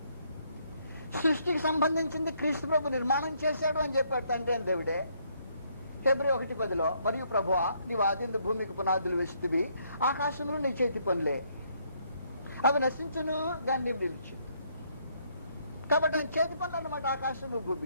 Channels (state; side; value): inverted; both; correlation -0.70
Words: సృష్టికి సంబంధించింది క్రీస్తు ప్రభు నిర్మాణం చేశాడు అని చెప్పాడు తండ్రి అని దేవుడే. ఫిబ్రవరి 1:10 మరియు ప్రభువా నీవు ఆదిందు భూమికి పునాదులు వేసితివి, ఆకాశంలో నీ చేతి పనులే, అవి నశించును దాన్ని నిలిచు. కాబట్టి ఆయన చేతి పనులు అన్నమాట ఆకాశము